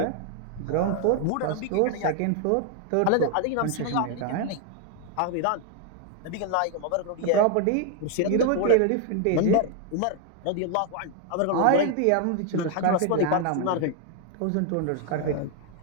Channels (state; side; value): different; both; correlation 0.01